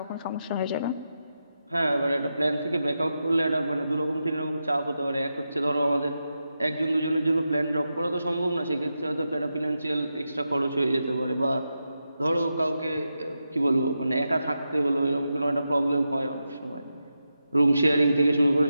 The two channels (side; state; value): both; inverted; correlation -0.88